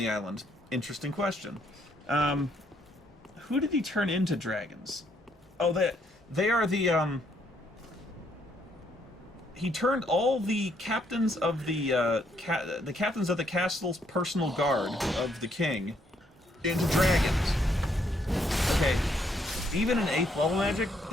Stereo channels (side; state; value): both; normal; correlation 0.71